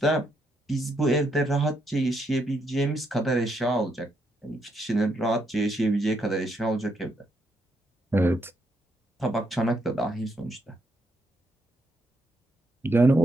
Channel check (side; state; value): both; normal; correlation 0.77